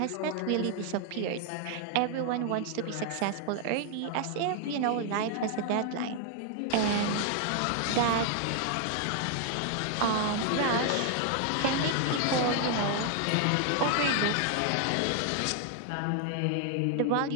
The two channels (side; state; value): both; different; correlation 0.00